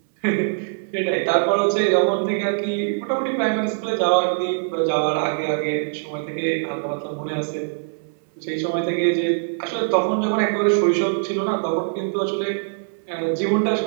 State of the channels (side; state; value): left; silent; 60 dB below the other